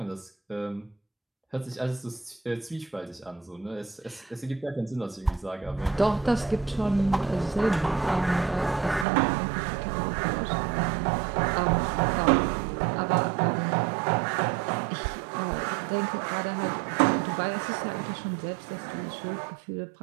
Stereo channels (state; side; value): drops out; left; at 9.1 s